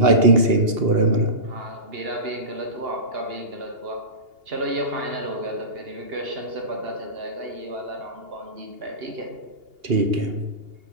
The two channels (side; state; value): left; late; 2.8 ms